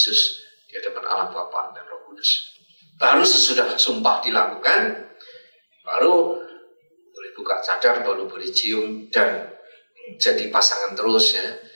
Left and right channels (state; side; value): inverted; both; correlation -1.00